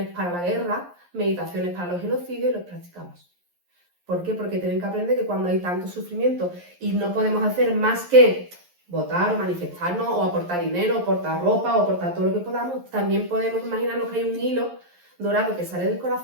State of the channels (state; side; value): late; left; 11 ms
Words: para la guerra, meditaciones para los genocidios y los practicamos. ¿Por qué? Porque tienen que aprender que cuando hay tanto sufrimiento y no podemos hacer más que votar o manifestarnos o aportar dinero, o aportar ropa o aportar todo lo que podamos, también podemos imaginarnos que hay un hilo dorado que sale del